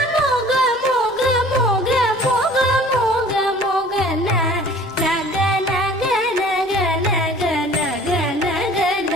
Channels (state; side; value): normal; both; correlation 0.49